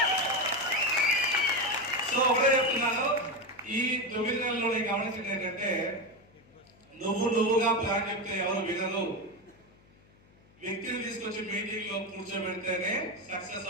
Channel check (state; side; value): noise; left; hum, 29 dB below the sound